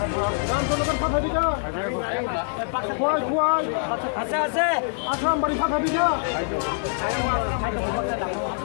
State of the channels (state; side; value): silent; right; digital silence